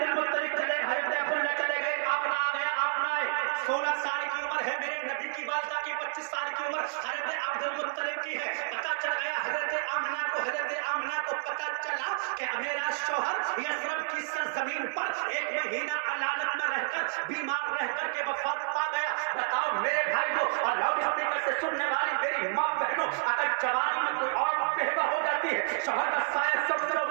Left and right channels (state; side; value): silent; left; 58 dB below the other